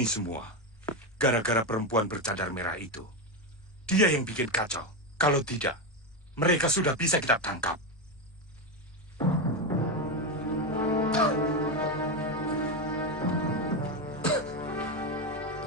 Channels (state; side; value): normal; both; correlation 0.11